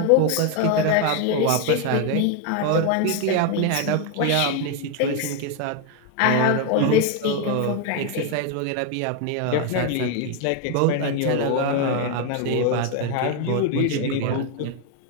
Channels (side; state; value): both; different; correlation 0.01